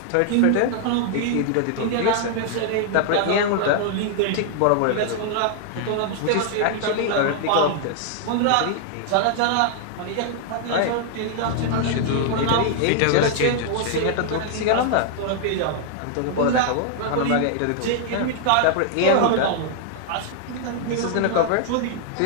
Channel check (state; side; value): different; both; correlation -0.01